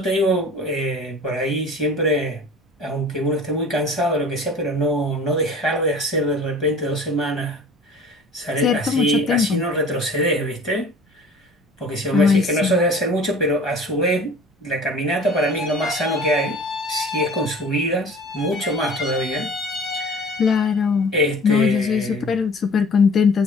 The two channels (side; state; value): both; normal; correlation 0.44